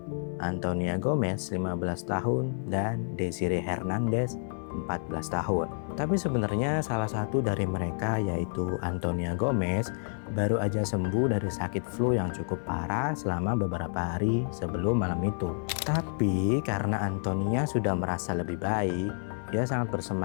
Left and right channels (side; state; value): right; silent; 58 dB below the other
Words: Antonia Gomez 15 tahun, dan Desiree Hernandez 14 tahun. Tapi sebenarnya salah satu dari mereka yaitu Antonia Gomez baru aja sembuh dari sakit flu yang cukup parah selama beberapa hari sebelum malam itu. Tapi karena Antonia sudah merasa lebih baik, dia sangat